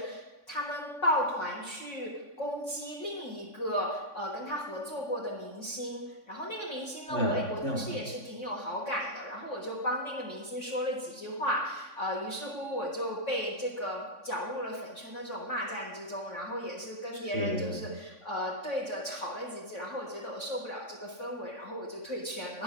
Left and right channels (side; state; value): right; late; 3.6 ms